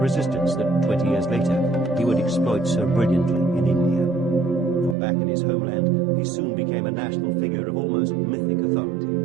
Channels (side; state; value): left; drops out; at 5.0 s